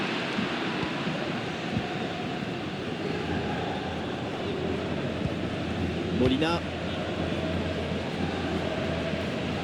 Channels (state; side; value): identical; both; correlation 1.00